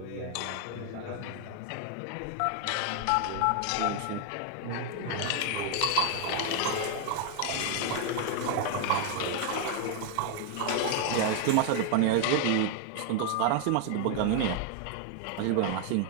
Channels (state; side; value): different; both; correlation 0.00